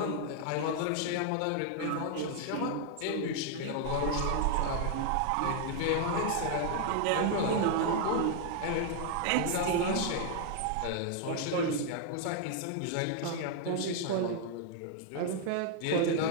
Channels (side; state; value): both; different; correlation 0.00